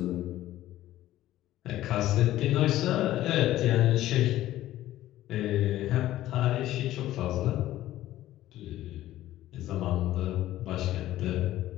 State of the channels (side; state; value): right; quieter; 14.4 dB